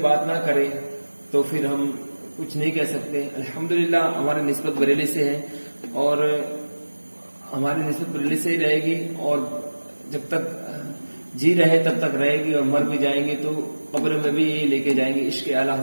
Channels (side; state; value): both; inverted; correlation -1.00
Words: بات نہ کرے تو پھر ہم کچھ نہیں کہہ سکتے۔ الحمدللہ ہماری نسبت بریلی سے ہے، اور ہماری نسبت بریلی سے ہی رہے گی، اور جب تک جی رہے تب تک رہے گی، اور مر بھی جائیں گے تو قبر میں بھی یہی لے کے جائیں گے، عشق اعلی